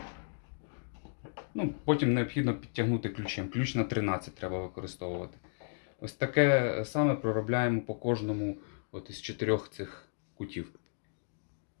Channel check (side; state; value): right; silent; digital silence